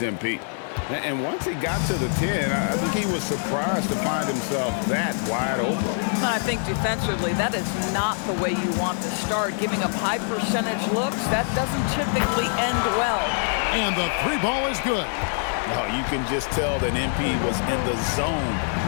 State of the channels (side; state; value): right; silent; 62 dB below the other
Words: And once he got to the 10, I think he was surprised to find himself that wide open. I think defensively, that is not the way you want to start. Giving up high percentage looks, that doesn't typically end well. And the three ball is good. No, you can just tell that MP was in the zone